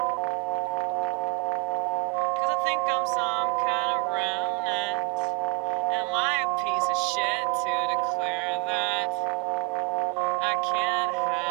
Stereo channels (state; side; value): quieter; left; 33.4 dB